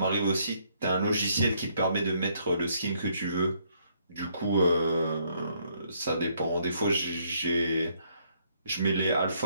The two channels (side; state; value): both; inverted; correlation -0.70